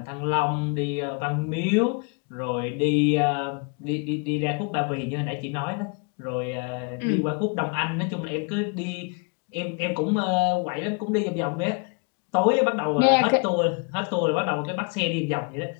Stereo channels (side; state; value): right; quieter; 34.7 dB